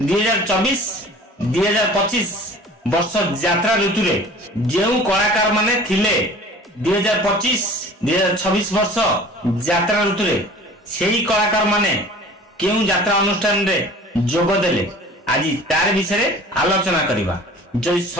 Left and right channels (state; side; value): normal; both; correlation 0.44